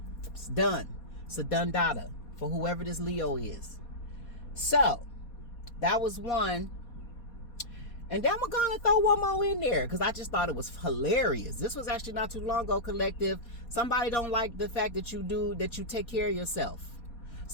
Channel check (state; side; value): late; right; 4.2 ms